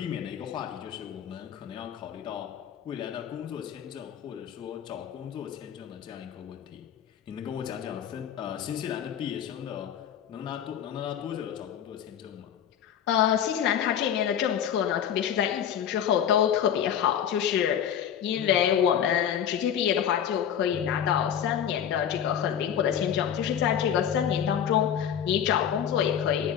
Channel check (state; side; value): quieter; right; 9.1 dB